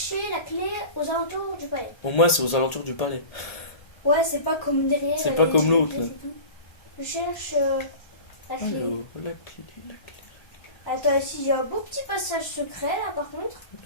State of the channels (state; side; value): late; right; 1.3 ms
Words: la clé aux alentours du palais. Au moins, c'est aux alentours du palais. Ouais, c'est pas comme derrière. C'est pas comme l'autre, là. c'est tout. Je cherche la clé. Alors, la clé. Attends, ici j'ai un beau petit passage secret là par contre.